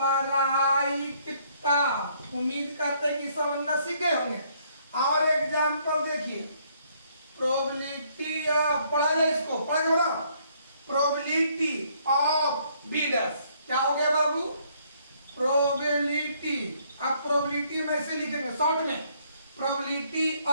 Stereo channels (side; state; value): both; inverted; correlation -0.66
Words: उम्मीद करते हैं कि समझना सीखे होंगे। और एग्जाम्पल देखिए, प्रोबेबिलिटी ऑफ, पढ़ा जाए इसको, पढ़ के बताओ, प्रोबेबिलिटी ऑफ बीडस, क्या हो गया बाबू, प्रोबेबिलिटी। अब प्रोबेबिलिटी में ऐसे लिखेंगे शॉर्ट में, probability